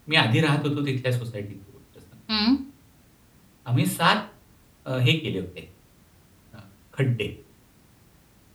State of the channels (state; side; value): identical; both; correlation 1.00